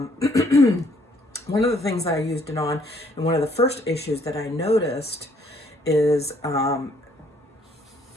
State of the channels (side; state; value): both; normal; correlation 0.65